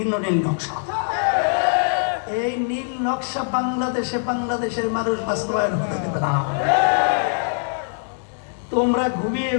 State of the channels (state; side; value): silent; right; digital silence